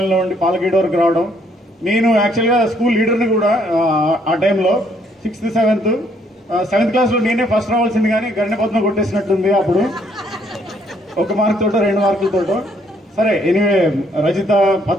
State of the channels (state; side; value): normal; both; correlation 0.67